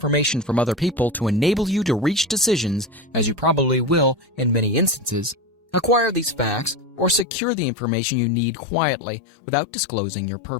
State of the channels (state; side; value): drops out; right; at 7.2 s